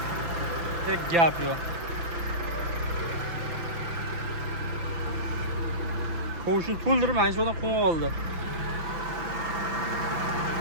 Tek gap yo'q. Qo'shni to'ldirib mana shu yerdan qo'yib oldi.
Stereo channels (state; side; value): late; left; 5.9 ms